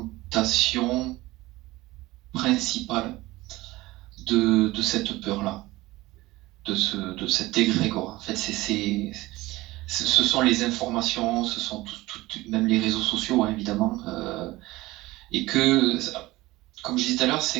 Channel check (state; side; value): quieter; left; 19.1 dB